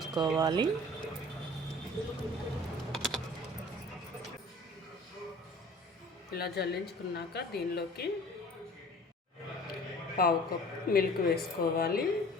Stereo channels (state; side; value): normal; both; correlation 0.46